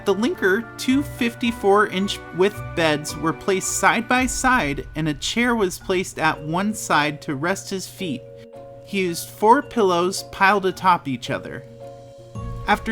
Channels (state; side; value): identical; both; correlation 1.00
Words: the Linker, two 54-inch width beds were placed side by side and a chair was placed at one side to rest his feet. He used 4 pillows piled atop each other.